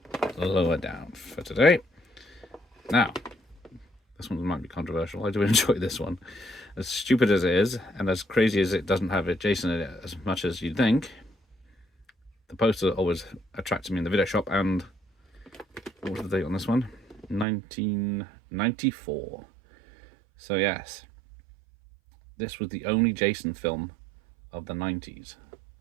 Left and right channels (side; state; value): left; drops out; at 17.4 s